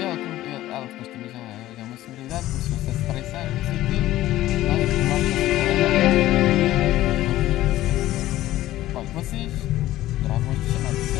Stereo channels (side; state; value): right; quieter; 15.1 dB